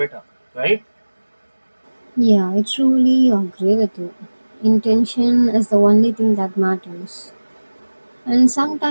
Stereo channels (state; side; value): inverted; both; correlation -1.00